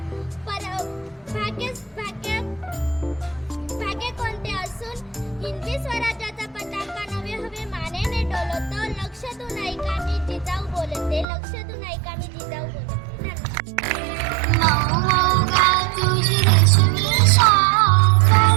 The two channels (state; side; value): drops out; left; at 11.2 s